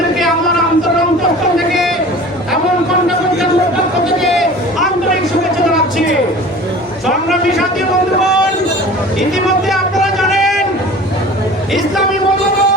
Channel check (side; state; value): both; normal; correlation 0.41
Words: আমার অন্তঃস্থল থেকে এবং খণ্ডপথ কেন্দ্রের পক্ষ থেকে আন্তরিক শুভেচ্ছা জানাচ্ছি। সংগ্রামী সাথী বন্ধুগণ, ইতিমধ্যে আপনারা জানেন ইসলামী